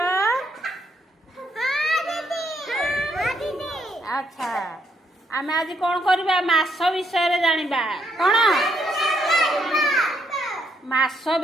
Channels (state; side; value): normal; both; correlation 0.74